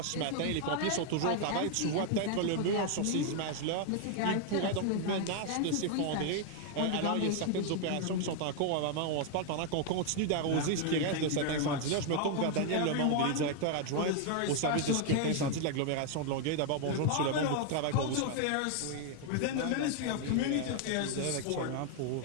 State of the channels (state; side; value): different; both; correlation 0.00